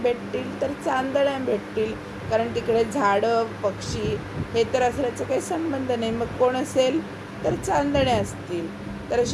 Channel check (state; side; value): identical; both; correlation 1.00